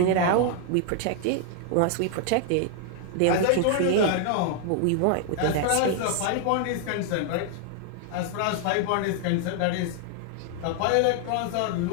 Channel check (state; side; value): different; both; correlation 0.00